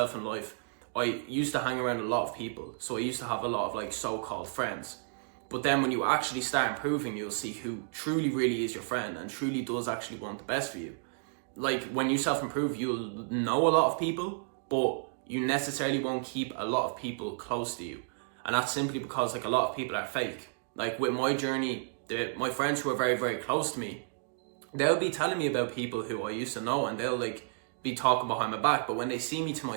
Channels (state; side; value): silent; left; digital silence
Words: in life, I used to hang around a lot of people. So I used to have a lot of like so-called friends. But then when you actually start improving, you'll see who truly really is your friend and truly does actually want the best for you. Like when you self-improve, you'll know a lot of people, but you necessarily won't keep a lot of people close to you. And that's simply because like a lot of people are fake. Like with my journey, my friends who are very, very close to me, they'll be telling me about people who I used to know, and they'll like be talking behind my back. But when they see me to